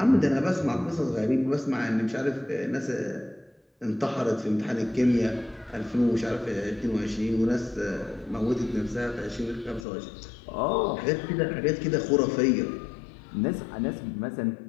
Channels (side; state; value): right; drops out; at 9.9 s